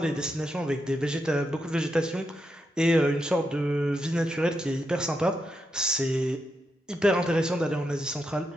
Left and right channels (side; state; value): both; normal; correlation 0.84